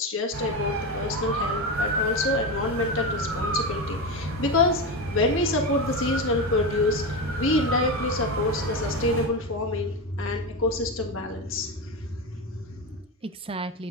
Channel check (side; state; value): both; normal; correlation 0.17